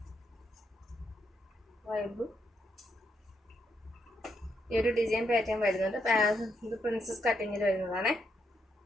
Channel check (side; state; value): both; normal; correlation 0.79